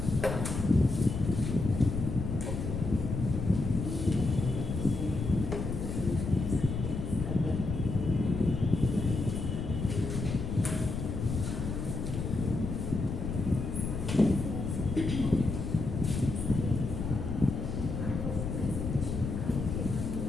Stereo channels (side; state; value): left; noise; rumble, 4 dB below the sound